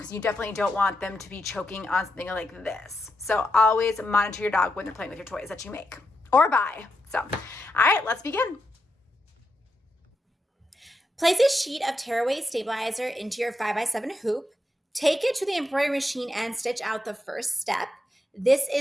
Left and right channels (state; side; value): normal; both; correlation 0.85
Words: you definitely don't want them to be choking on something like this. So always monitor your dog when they're playing with your toys that you make or buy. So, all right, let's begin. Place a sheet of tearaway stabilizer into your 5x7 hoop. Take it to the embroidery machine and stitch out the first step. This